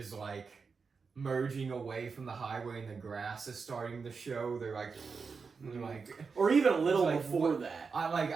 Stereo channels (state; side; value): quieter; left; 5.1 dB